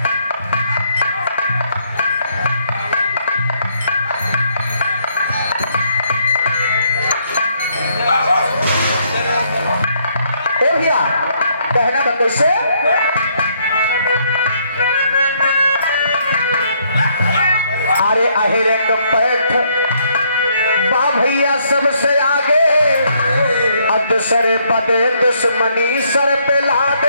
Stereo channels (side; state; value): both; inverted; correlation -0.70